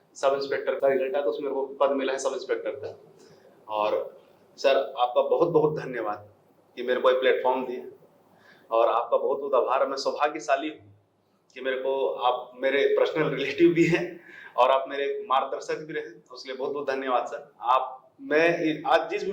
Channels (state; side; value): identical; both; correlation 1.00